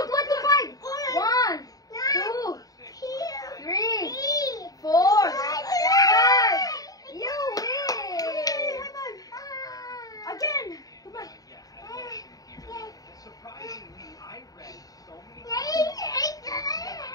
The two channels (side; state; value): right; late; 0.18 ms